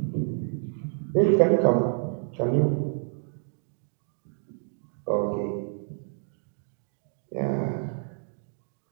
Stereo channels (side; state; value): left; silent; digital silence